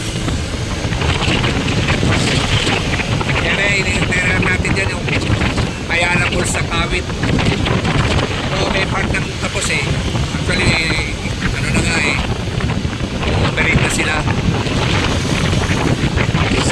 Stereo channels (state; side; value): identical; both; correlation 1.00